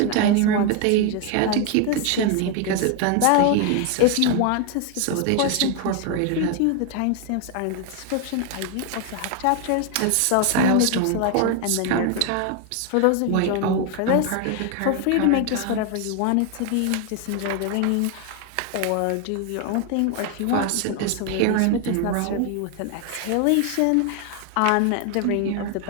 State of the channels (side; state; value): both; different; correlation 0.01